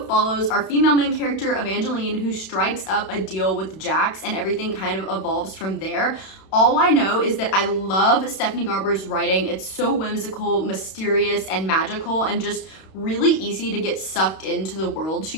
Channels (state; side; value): late; right; 31 ms